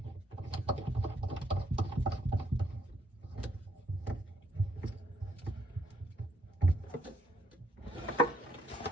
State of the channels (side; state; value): both; normal; correlation 0.72